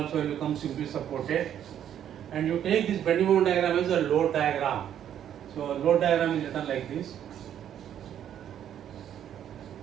will become simply supported. And you take this bending moment diagram as a load diagram. So load diagram is written like this.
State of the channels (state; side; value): quieter; left; 10.1 dB